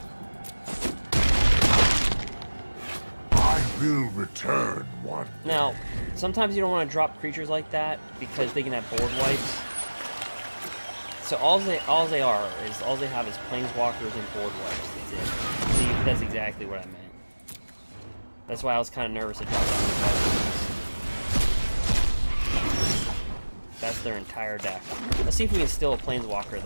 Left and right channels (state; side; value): inverted; both; correlation -1.00